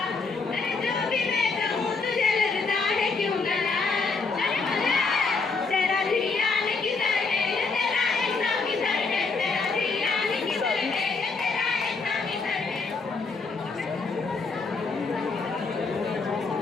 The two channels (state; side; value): quieter; right; 4.4 dB